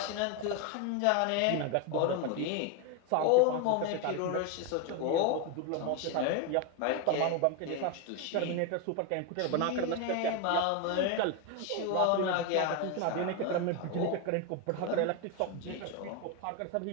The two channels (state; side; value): different; both; correlation 0.02